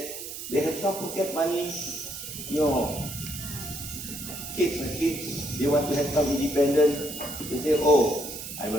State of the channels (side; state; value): right; noise; hiss, 9 dB below the sound